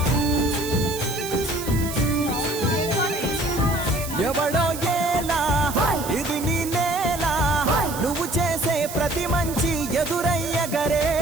ఎవడో ఏలా ఇది నీ నేల నువ్వు చేసే ప్రతి మంచి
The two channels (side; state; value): right; noise; hiss, 10 dB below the sound